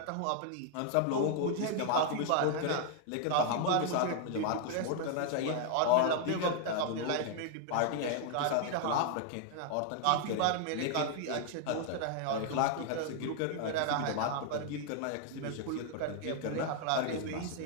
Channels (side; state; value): both; different; correlation 0.00